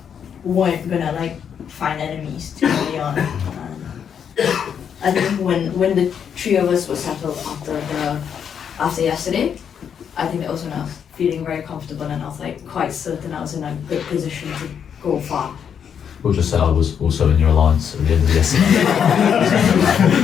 weren't gonna like find enemies too early on. I think when the 3 of us were settled after yesterday, I think that was when I was feeling very comfortable and I was like quite certain I was in a good position to go far. We'll just say I was also in your alliance at the end of yesterday.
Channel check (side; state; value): right; quieter; 7.8 dB